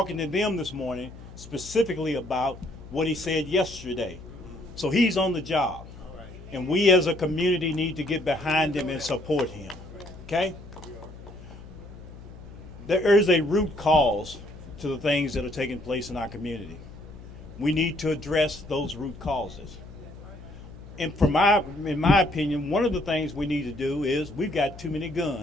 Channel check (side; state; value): left; noise; hum, 16 dB below the sound